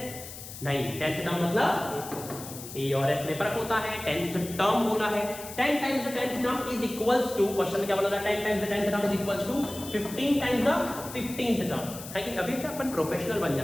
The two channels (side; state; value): left; noise; hiss, 12 dB below the sound